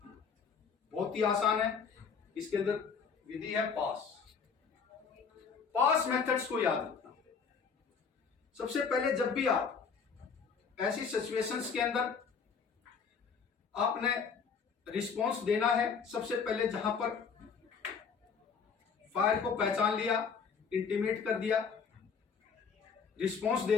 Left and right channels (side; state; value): right; quieter; 5.9 dB